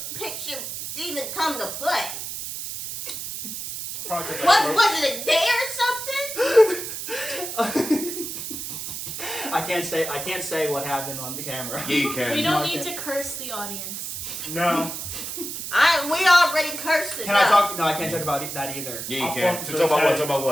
picture even come to play? Probably 'cause I Was it a day or something? I can't say what happened on the camera. Yeah, you can. We don't Okay. need to curse the audience. No. We already cursed it. Can I talk? No, I can't talk about that either. Yeah, you I'll can. fuck To with talk about what? those Talk about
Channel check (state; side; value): noise; right; hiss, 6 dB below the sound